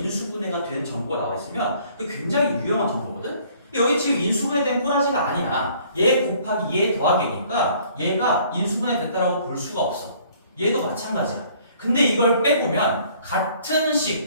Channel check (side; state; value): both; inverted; correlation -0.58